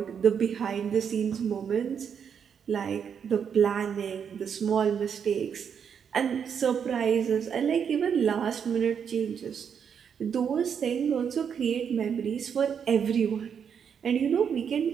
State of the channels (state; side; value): quieter; left; 7.4 dB